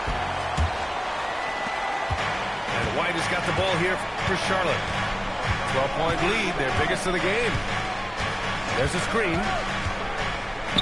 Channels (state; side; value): identical; both; correlation 1.00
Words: And White has got the ball here for Charlotte. 12-point lead, their biggest of the game. There's a screen.